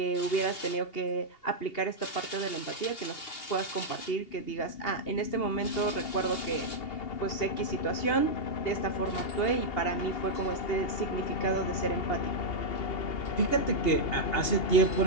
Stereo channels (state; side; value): late; right; 2.8 ms